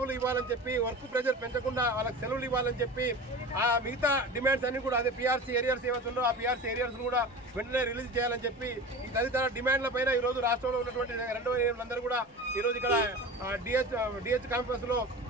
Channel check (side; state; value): both; normal; correlation 0.33